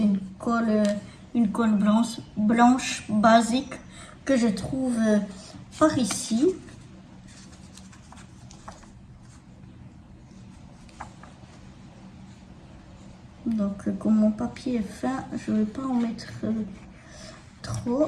une colle blanche basique que je trouve par ici. Donc comme mon papier est fin, je ne vais pas en mettre trop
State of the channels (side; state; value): both; identical; correlation 1.00